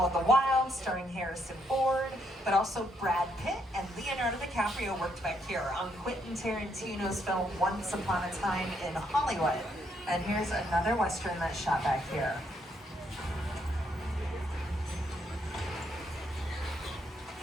of the Wild starring Harrison Ford. But also Brad Pitt and Leonardo DiCaprio worked back here on Quentin Tarantino's film Once Upon a Time in Hollywood. And here's another Western that's shot back here.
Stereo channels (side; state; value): both; normal; correlation 0.74